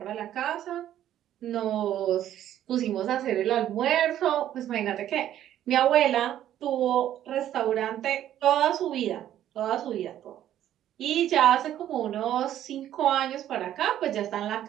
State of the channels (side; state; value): left; quieter; 11.7 dB